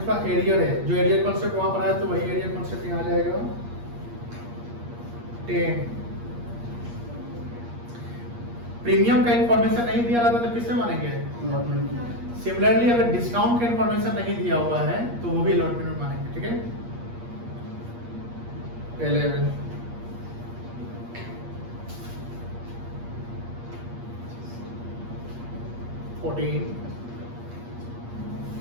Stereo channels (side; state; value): left; late; 8.5 ms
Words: एरियर है, जो एरियर कॉन्सेप्ट वहां पर आया तो वही एरियर कॉन्सेप्ट यहाँ आ जाएगा। 10 प्रीमियम का इंफॉर्मेशन नहीं दिया रहता तो किससे मानेंगे? सिमिलरली अगर डिस्काउंट का इंफॉर्मेशन नहीं दिया हुआ है तो वो भी अलॉटमेंट में मानेंगे। ठीक है, 11 14